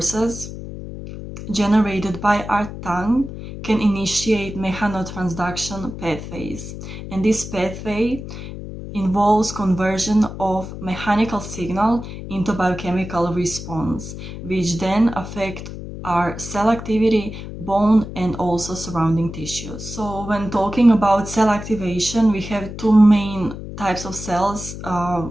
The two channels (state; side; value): noise; left; hum, 10 dB below the sound